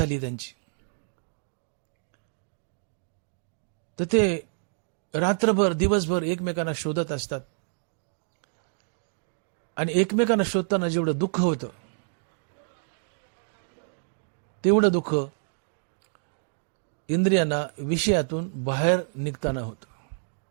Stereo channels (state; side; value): silent; left; digital silence